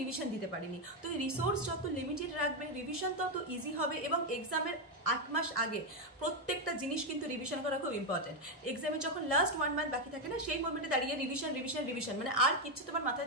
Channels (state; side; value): normal; both; correlation 0.05